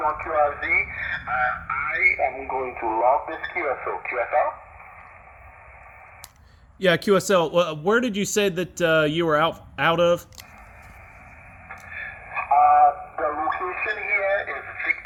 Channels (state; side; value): identical; both; correlation 1.00